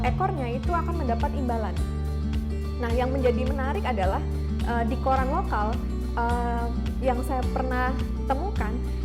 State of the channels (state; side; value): identical; both; correlation 1.00